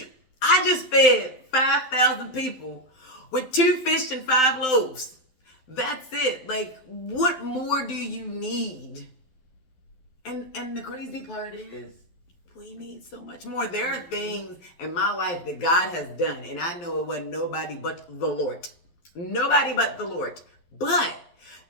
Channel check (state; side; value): late; right; 12 ms